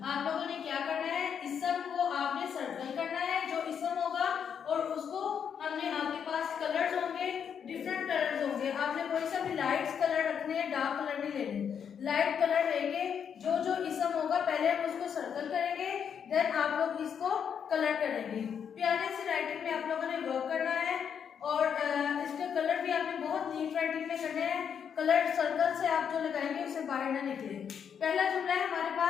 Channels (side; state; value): right; quieter; 7.6 dB